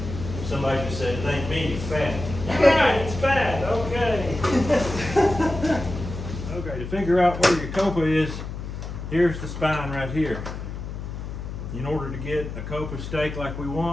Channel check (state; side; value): noise; left; hum, 8 dB below the sound